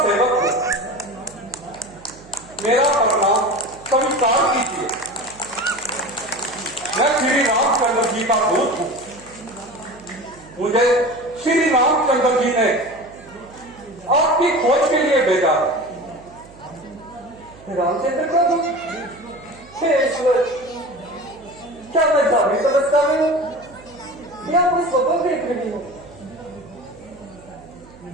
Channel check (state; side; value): noise; right; hum, 23 dB below the sound